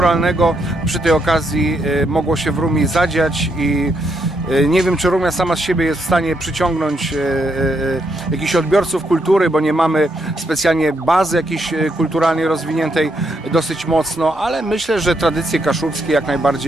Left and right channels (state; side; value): normal; both; correlation 0.77